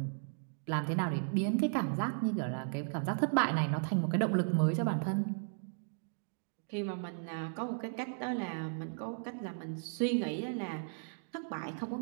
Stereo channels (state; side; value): silent; left; digital silence